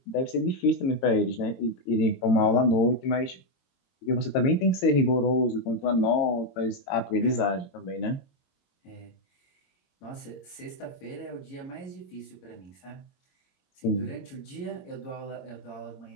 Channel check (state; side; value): late; right; 22 ms